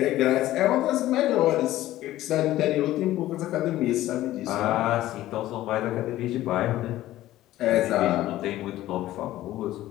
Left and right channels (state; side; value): quieter; right; 14.9 dB